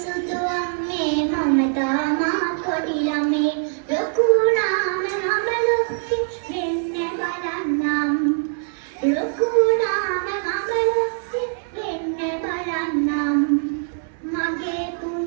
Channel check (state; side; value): silent; left; digital silence